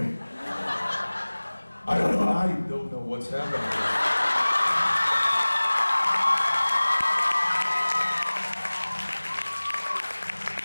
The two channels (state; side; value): inverted; both; correlation -1.00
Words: I don't know what's happening.